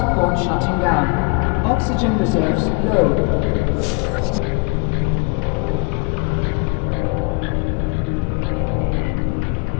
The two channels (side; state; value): right; quieter; 30.9 dB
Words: shutting down. Oxygen reserves low.